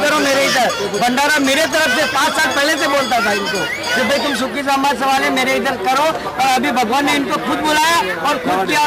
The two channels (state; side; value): identical; both; correlation 1.00